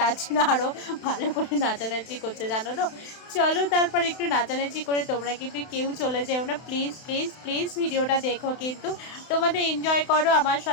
জন্য আরও ভালো করে নাচানাচি করছে, জানো তো। চলো তারপর একটু নাচানাচি করে, তোমরা কিন্তু কেউ চলে যেও না প্লিজ প্লিজ প্লিজ, ভিডিওটা দেখো কিন্তু, তোমাদের এনজয় করো, আমার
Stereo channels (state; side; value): late; right; 31 ms